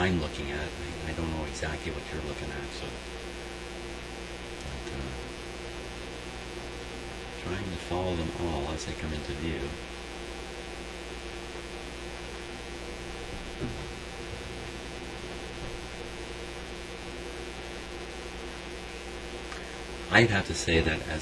looking at. I don't know exactly what you're looking at, so trying to follow them all as they come into view. I'd have to say that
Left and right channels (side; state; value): both; identical; correlation 1.00